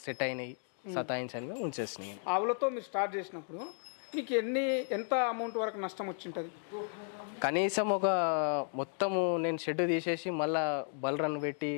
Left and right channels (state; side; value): silent; right; 55 dB below the other